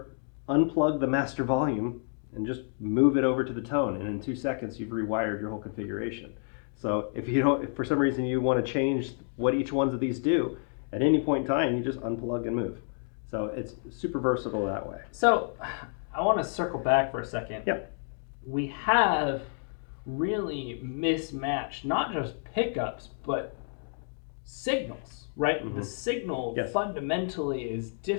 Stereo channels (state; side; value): silent; right; 56 dB below the other